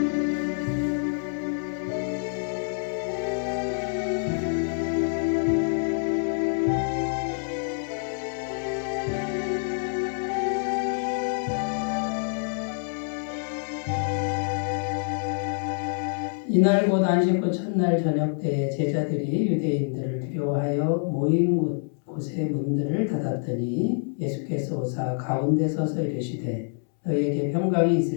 이날 곧 안식구 첫날 저녁 때 제자들이 유대인들을 두려워하여 모인 곳의 문들을 닫았더니 예수께서 오사 가운데 서서 이르시되 너희에게 평강이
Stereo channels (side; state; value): right; silent; 61 dB below the other